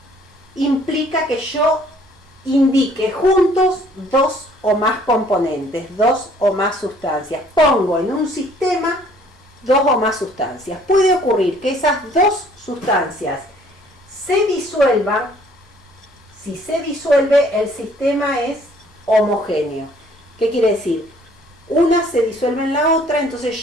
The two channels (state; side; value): normal; both; correlation 0.59